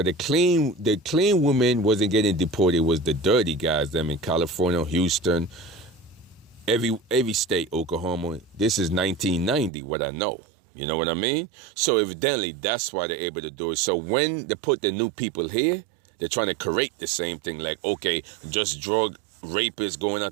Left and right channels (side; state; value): left; drops out; at 9.7 s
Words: the clean women wasn't getting deported. It was the dirty guys, them in California, Houston, every state, Oklahoma. This is 1990, what I know. You know what I mean? So evidently, that's why they're able to do it. So when they put the new people here, they're trying to correct the same thing. Like, okay, just drug rapists going